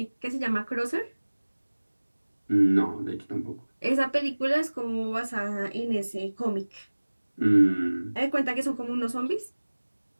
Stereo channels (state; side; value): inverted; both; correlation -1.00